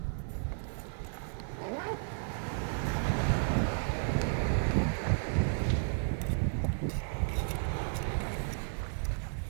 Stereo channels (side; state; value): left; silent; digital silence